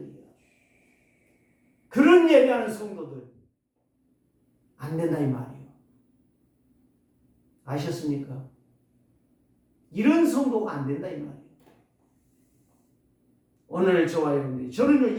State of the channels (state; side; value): identical; both; correlation 1.00